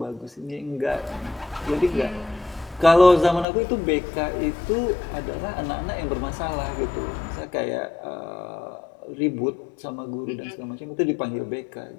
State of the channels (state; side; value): drops out; right; at 3.5 s